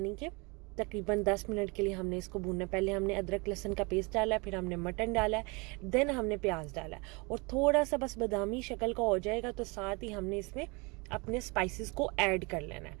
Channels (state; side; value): quieter; left; 28.5 dB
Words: कि तकरीबन 10 मिनट के लिए हमने इसको भूनना है। पहले हमने अदरक लहसुन का पेस्ट डाला है, फिर हमने मटन डाला है, देन हमने प्याज डाला है और थोड़ा सा बस बादामी शक्ल का हो जाएगा तो साथ ही हमने इसमें अपने स्पाइसेस को ऐड कर लेना